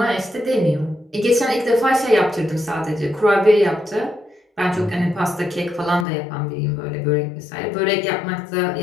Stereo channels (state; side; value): drops out; right; at 6.1 s